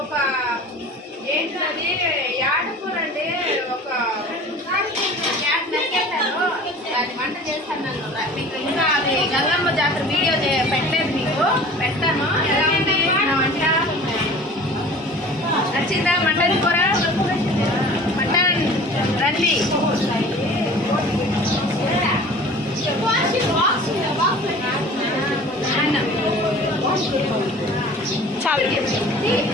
ఏంటది యాడకూర అండి ఒక క్యాట్ నరికేశాను దాన్ని వంట చేస్తాను మీకు ఇంకా అది గంగమ్మ జాతర వీడియో పెట్టలేదు మీకు పెడతాను ఎలా ఉంది నా వంట నచ్చిందా మటన్ కూర మటన్ రండి చాలా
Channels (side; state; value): both; normal; correlation 0.43